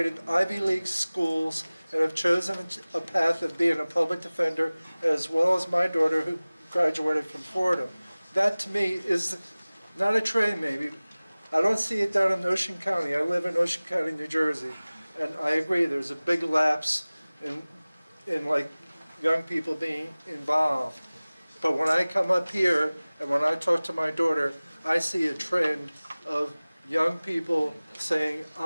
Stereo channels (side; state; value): both; inverted; correlation -0.99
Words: Ivy League schools and have chosen a path of being a public defender, as well as my daughter, who graduated from Fordham. That to me is not a trade, maybe. I don't see it down in Ocean County. I live in Ocean County, New Jersey, and I agree, there's a big lapse in like young people being involved. But when I come up here and when I talk to my daughter, I see a trend of young people saying,